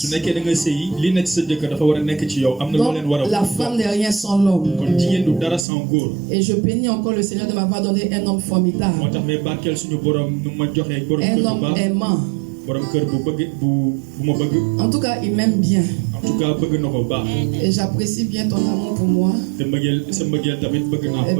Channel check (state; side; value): drops out; left; at 5.7 s